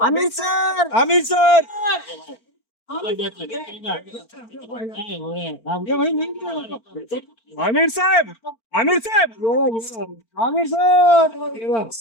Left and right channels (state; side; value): late; right; 4.4 ms